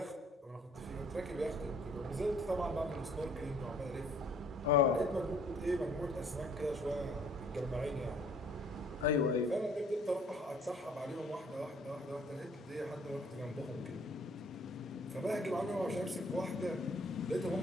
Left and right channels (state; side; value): normal; both; correlation 0.58